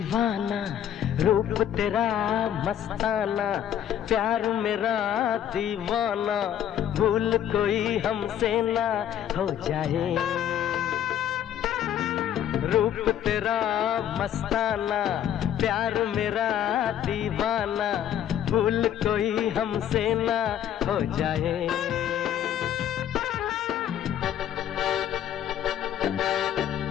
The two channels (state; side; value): quieter; right; 10.2 dB